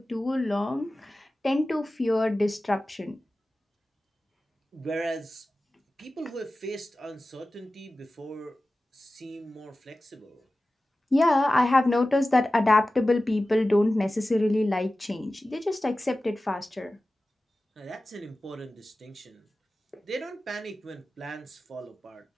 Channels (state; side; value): normal; both; correlation 0.95